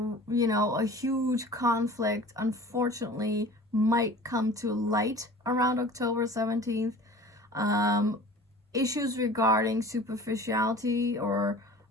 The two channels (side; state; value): both; normal; correlation 0.42